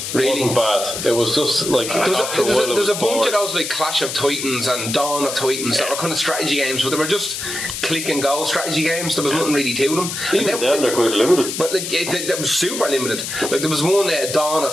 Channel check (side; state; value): left; noise; hiss, 5 dB below the sound